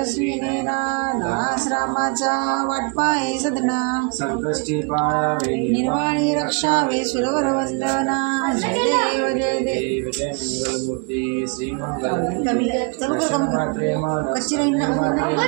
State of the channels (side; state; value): left; quieter; 33.9 dB